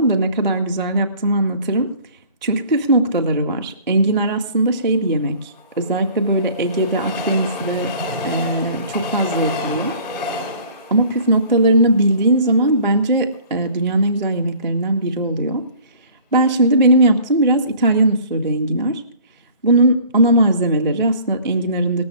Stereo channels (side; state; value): both; inverted; correlation -0.50